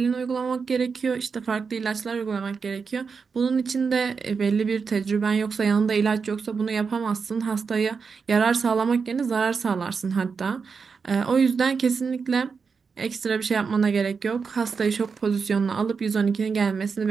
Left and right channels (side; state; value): left; quieter; 5.4 dB